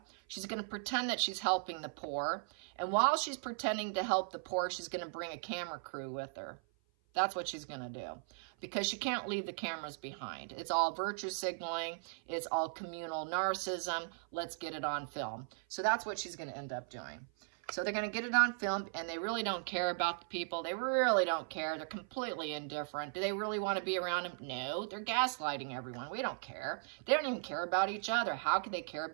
She's going to pretend that she's helping the poor. And while she's pretending to help the poor, she's going to bring a camera crew with her. That's what she's going to do, because she can't leave the cameras behind. It's all virtue signaling. It's all communal narcissism. Let's get it on film. So that's what she's going to end up doing. So they're going to get it on film, and they really don't care about the people. They really don't care. They're completely indifferent. Do they really want to be around them? No, they're gaslighting everyone. We don't care. They don't even care about each other. How could they care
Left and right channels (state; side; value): silent; left; 53 dB below the other